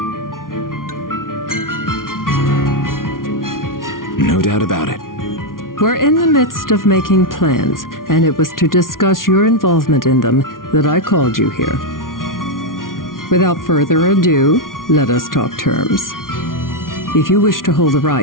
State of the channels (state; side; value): late; right; 0.90 ms